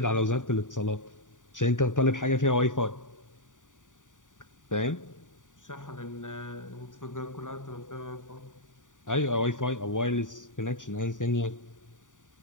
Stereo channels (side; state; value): right; late; 0.87 ms